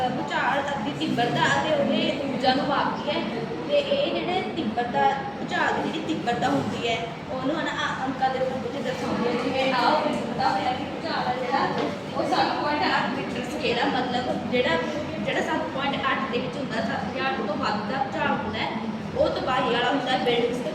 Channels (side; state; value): both; identical; correlation 1.00